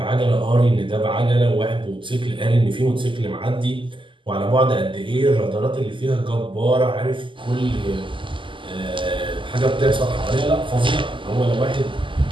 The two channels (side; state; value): left; late; 0.25 ms